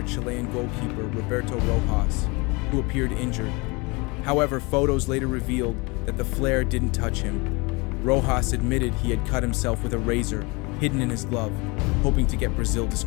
Chilean goalkeeper Roberto Rojas, who appeared injured. However, photos later revealed that the flare didn't touch him. Rojas admitted he had cut himself with a razor hidden in his glove, hoping to get Brazil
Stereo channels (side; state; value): right; quieter; 27.0 dB